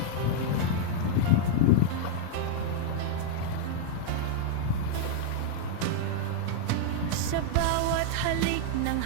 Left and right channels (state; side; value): different; both; correlation -0.01